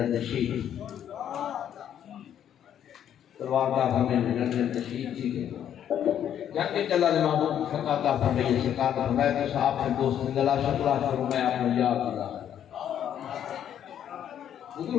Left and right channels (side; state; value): right; quieter; 9.9 dB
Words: شہید تلوار کا ہمیں لڑنے لڑنے شہید تھی جب کہ اللہ نے محبوب فقاتا فرمائی سرکار نے فرمایا کہ صاحب کے دوست نے گلا شکرہ کرو میں آپ نے یاد دلا حضور